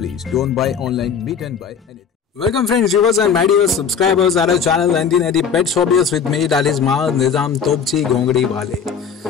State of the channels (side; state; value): right; quieter; 6.6 dB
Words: Don't buy online, meet and buy anything. Welcome friends, viewers and my dear subscribers at our channel 1980 Pets Hobbyist with me, that is Maaz Nizam Topchi Gongdi